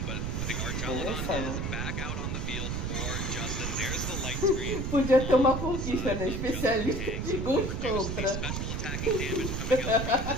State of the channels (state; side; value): noise; right; rumble, 2 dB below the sound